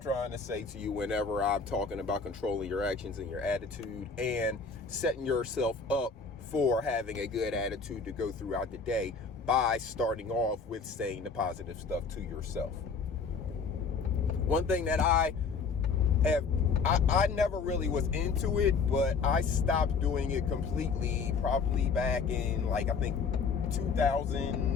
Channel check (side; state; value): right; quieter; 5.1 dB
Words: trying to say to you whenever I'm talking about controlling your actions and your attitude and setting yourself up for having a good attitude to go throughout the day by starting off with saying the positive stuff to yourself. One thing that I never really was into it, but I stopped doing it completely probably back in I think